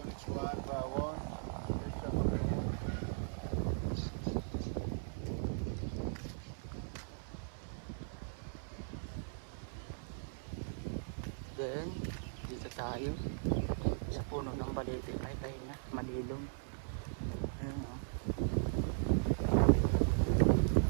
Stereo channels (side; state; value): left; silent; 52 dB below the other